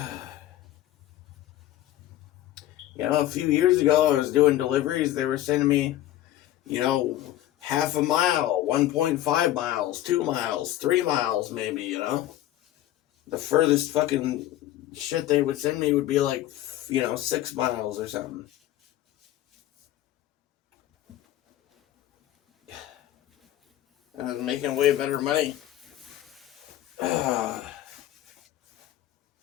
A few years ago, I was doing deliveries. They were sending me, half a mile, 1.5 miles, 2 miles, 3 miles, maybe, The furthest fucking shit they would send me would be like, 6 miles or something. And I was making way better money.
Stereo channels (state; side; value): quieter; right; 13.8 dB